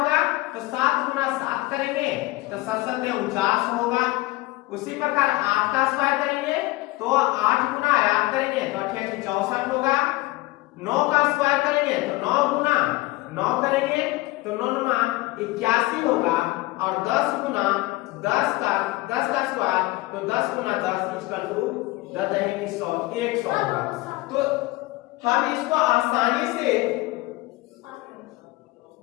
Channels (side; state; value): right; quieter; 20.4 dB